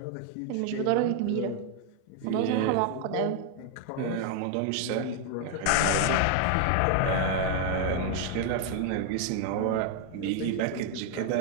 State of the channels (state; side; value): different; both; correlation 0.00